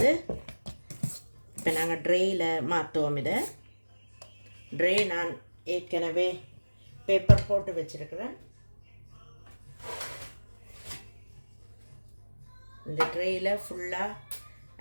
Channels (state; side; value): inverted; both; correlation -1.00